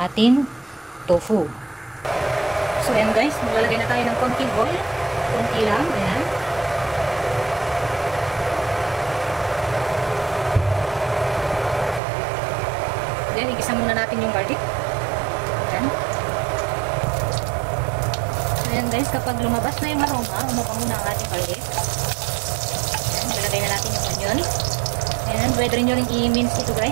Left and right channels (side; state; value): left; drops out; at 12.0 s